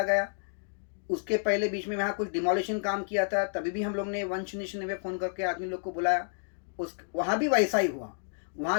गया, उसके पहले बीच में वहाँ कुछ डिमोलिशन काम किया था, तभी भी हम लोग ने 199 फ़ोन करके आदमी लोग को बुलाया, वहाँ भी वैसा ही हुआ।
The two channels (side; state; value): right; silent; digital silence